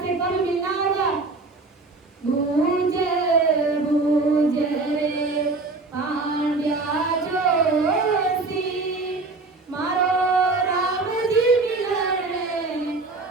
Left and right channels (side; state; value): left; quieter; 3.6 dB